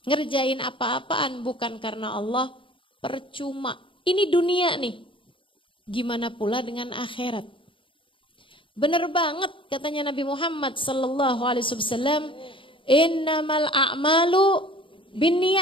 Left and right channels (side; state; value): right; late; 0.25 ms